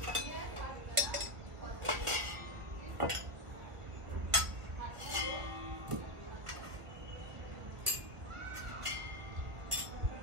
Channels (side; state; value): left; late; 1.4 ms